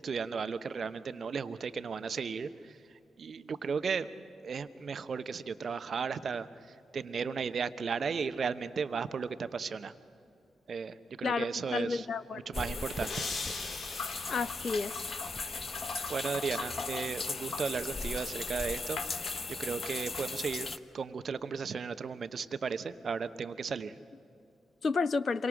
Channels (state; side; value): normal; both; correlation 0.82